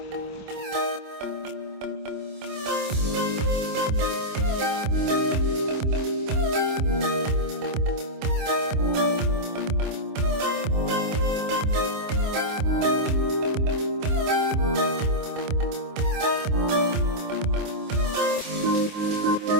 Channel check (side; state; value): left; late; 27 ms